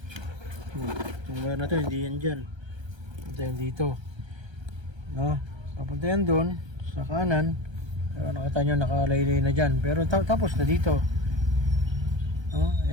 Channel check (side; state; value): left; late; 1.3 ms